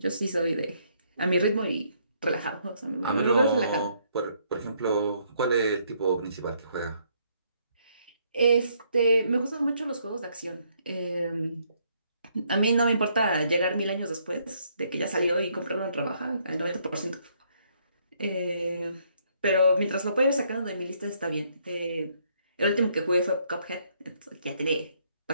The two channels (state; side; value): inverted; both; correlation -0.70